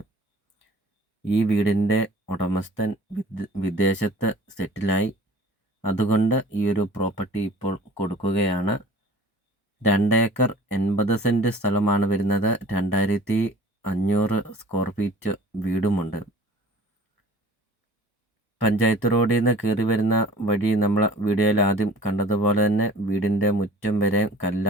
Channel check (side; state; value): both; normal; correlation 0.46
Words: ഈ വീടിൻ്റെ ഉടമസ്ഥൻ വിദേശത്ത് സെറ്റിലായി. അതുകൊണ്ട് ഈ ഒരു പ്രോപ്പർട്ടി ഇപ്പോൾ കൊടുക്കുകയാണ്. 2 ഏക്കർ 80 സെൻറ്റ് സ്ഥലമാണ് വരുന്നത്. 2500 സ്ക്വയർ ഫീറ്റ് വീടുമുണ്ട്. പഞ്ചായത്ത് റോഡിൽ നിന്ന് കയറി വരുന്ന വഴി നമ്മൾ വീഡിയോയിൽ ആദ്യം കണ്ടതുപോലെ തന്നെ വീടിൻ്റെ മുറ്റം വരെ